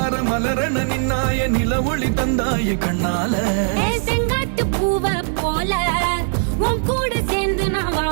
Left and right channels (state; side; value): silent; left; 62 dB below the other